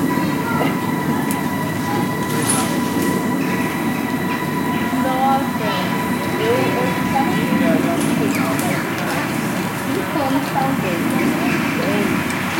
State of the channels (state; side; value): identical; both; correlation 1.00